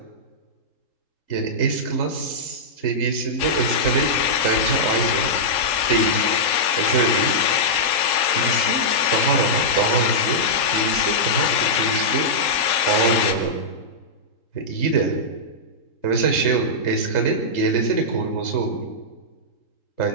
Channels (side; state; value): right; late; 3.7 ms